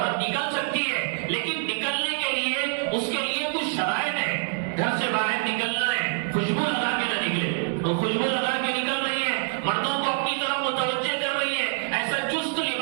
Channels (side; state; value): left; silent; 61 dB below the other